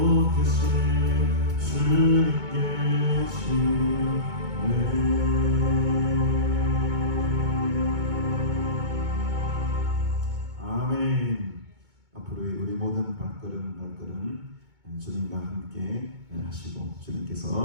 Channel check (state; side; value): late; left; 2.2 ms